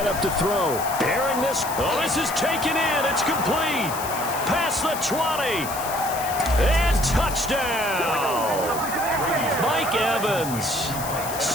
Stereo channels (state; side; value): noise; left; hiss, 9 dB below the sound